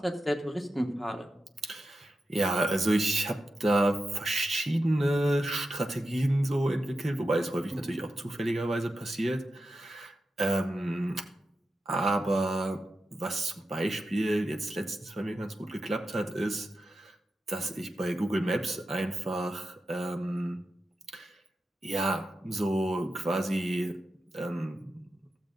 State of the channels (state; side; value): normal; both; correlation 0.90